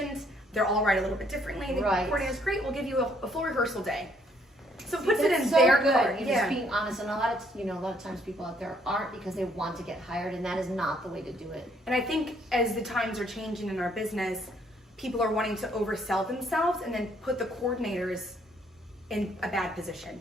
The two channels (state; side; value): normal; both; correlation 0.67